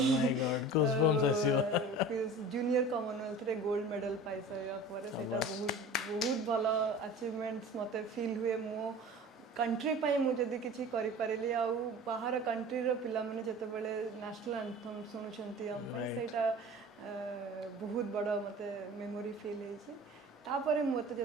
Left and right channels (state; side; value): normal; both; correlation 0.39